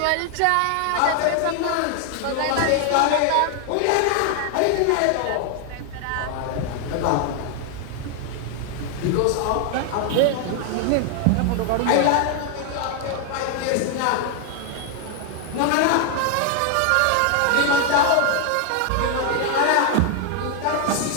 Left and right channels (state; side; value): different; both; correlation 0.00